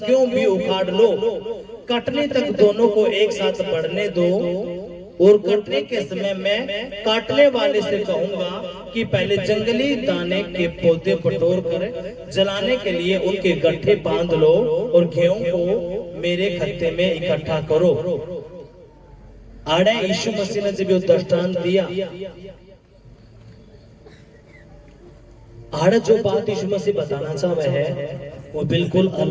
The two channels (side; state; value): both; identical; correlation 1.00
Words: भी उखाड़ लो। कटने तक दोनों को एक साथ बढ़ने दो और कटने के समय मैं काटने वाले से कहूंगा कि पहले जंगली दाने के पौधे बटोर कर जलाने के लिए उनके गट्ठे बांध लो और गेहूं को मेरे खत्ते में इकट्ठा करो। आड़े यीशु मसीह ने जब ये दृष्टांत दिया, आड़े जो बात यीशु मसीह बताना चाह रहे हैं वो बिल्कुल